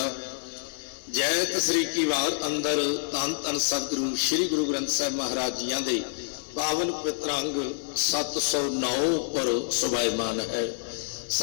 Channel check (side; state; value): right; silent; 58 dB below the other